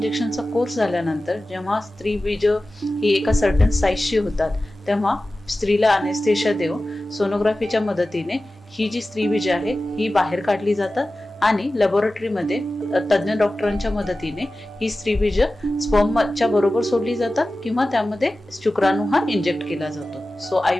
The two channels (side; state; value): both; normal; correlation 0.95